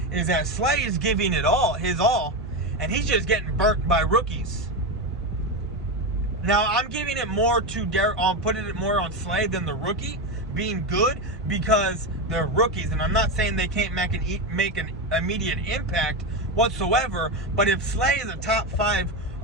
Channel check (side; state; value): both; normal; correlation 0.14